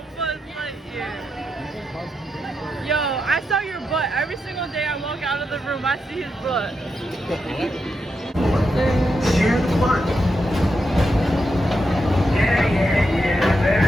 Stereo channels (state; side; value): normal; both; correlation 0.85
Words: Buzz Lightyear. Yo, I saw your butt. Every single day I walk out of the room, I see his butt. Share the fun. Yeah,